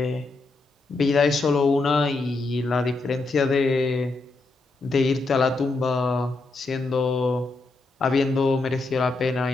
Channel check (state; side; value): quieter; right; 3.4 dB